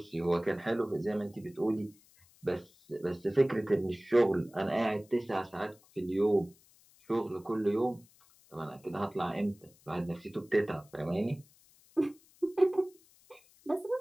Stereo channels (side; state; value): left; noise; hiss, 29 dB below the sound